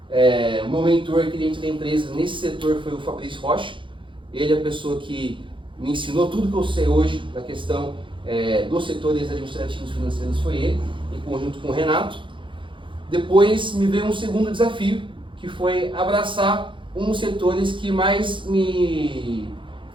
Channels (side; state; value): left; late; 0.24 ms